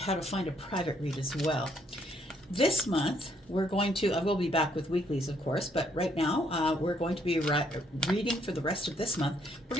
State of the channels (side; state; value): both; normal; correlation 0.70